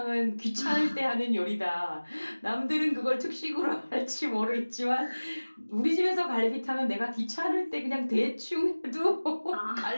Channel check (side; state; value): both; inverted; correlation -1.00